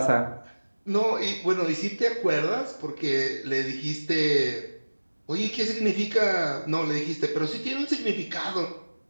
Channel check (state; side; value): inverted; both; correlation -1.00